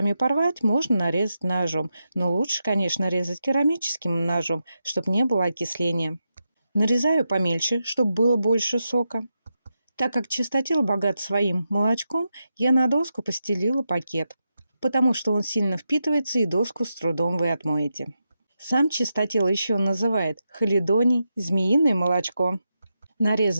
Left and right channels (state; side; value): inverted; both; correlation -0.87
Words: порвать, можно нарезать ножом, но лучше, конечно, резать керамическим ножом, чтобы не было окисления. Нарезаю помельче, чтобы было больше сока. Так как чистотел богат своим молочком, я на доску постелила пакет, потому что он сильно впитывается и доску с трудом вы отмоете. Сам чистотел еще называют халидоний, змеиное молочко.